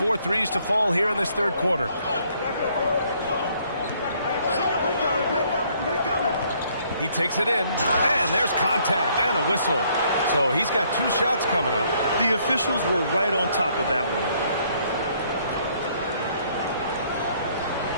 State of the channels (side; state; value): both; inverted; correlation -0.66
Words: threes to fall here in this third quarter. He takes it in, and there's contact and a whistle. So he's got 2 shots coming up. The officials were right on top of that one.